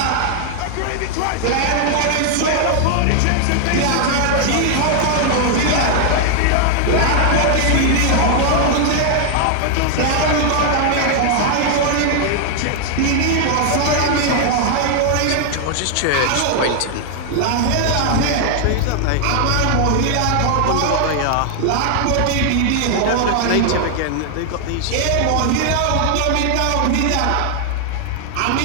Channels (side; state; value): both; different; correlation 0.00